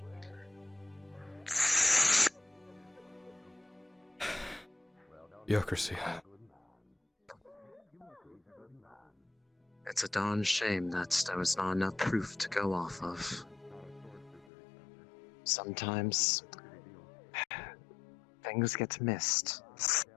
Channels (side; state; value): right; drops out; at 14.5 s